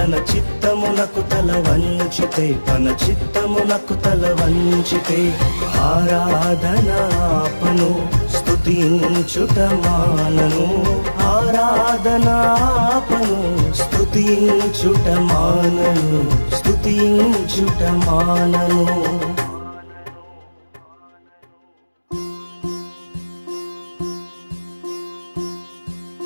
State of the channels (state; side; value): inverted; both; correlation -1.00